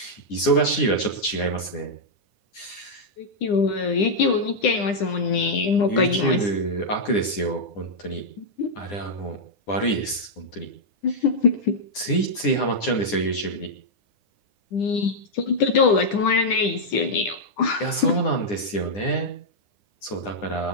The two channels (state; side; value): late; right; 9.8 ms